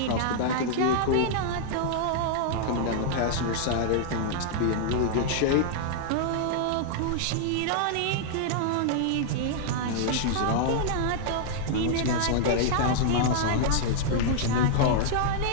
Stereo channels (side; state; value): both; different; correlation -0.01